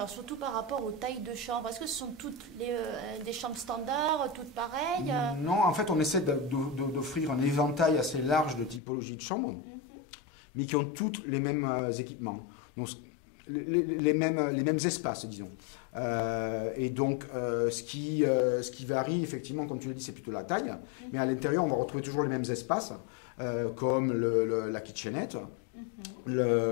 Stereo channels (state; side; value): drops out; right; at 8.8 s